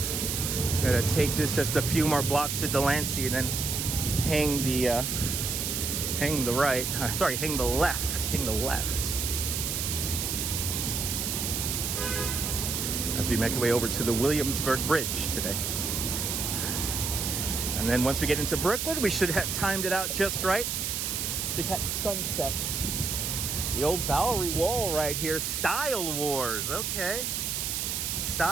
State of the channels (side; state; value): right; noise; hiss, 1 dB below the sound